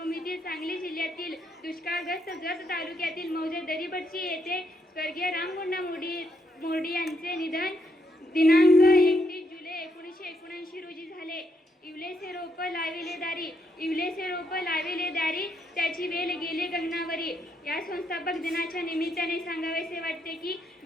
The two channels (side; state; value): both; normal; correlation 0.77